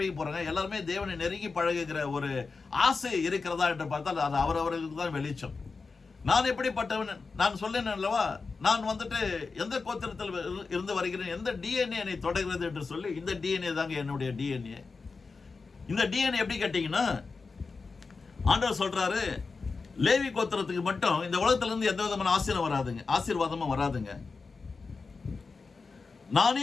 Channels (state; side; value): quieter; right; 4.4 dB